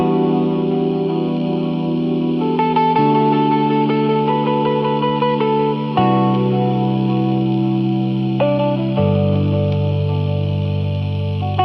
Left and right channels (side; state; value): both; identical; correlation 1.00